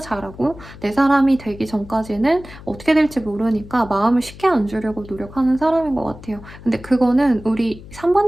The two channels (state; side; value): noise; left; hum, 17 dB below the sound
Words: 잘하고 내 사람이 되기 전까지는 어떻게 될지 모르니까 마음을 쉽게 안 주려고 노력하는 사람인 것 같아요. 근데 그거는 우리